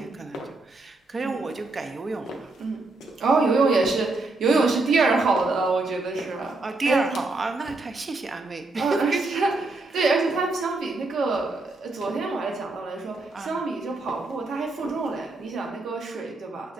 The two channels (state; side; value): quieter; left; 3.2 dB